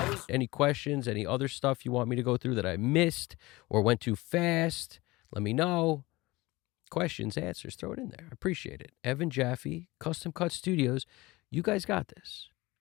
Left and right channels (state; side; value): quieter; right; 21.0 dB